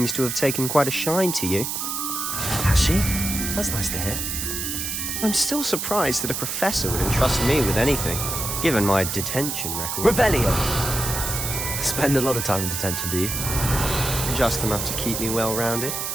to have taken quite a shine to you. Has she? That's nice to hear. I'm still surprised that a professor would entrust me with anything, given my detention record. Revelio. Spend a lot of time in detention, do you? Just enough to keep me well-rounded.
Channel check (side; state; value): right; noise; hiss, 3 dB below the sound